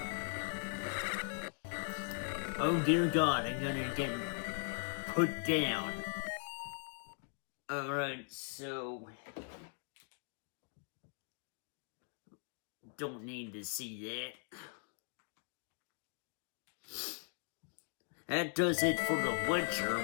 Oh dear God, I'm gonna get put down. Alright, so don't need to see that. That does it for The Witcher,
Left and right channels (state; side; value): silent; right; 51 dB below the other